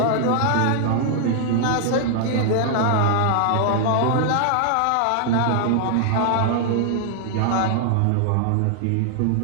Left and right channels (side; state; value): both; different; correlation 0.00